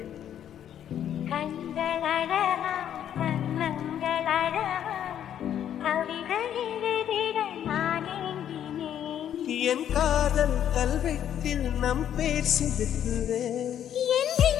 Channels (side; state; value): right; quieter; 10.1 dB